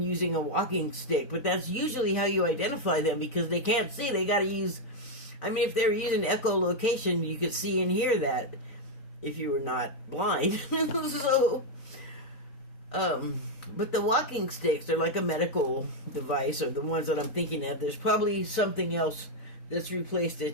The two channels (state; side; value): late; right; 4.0 ms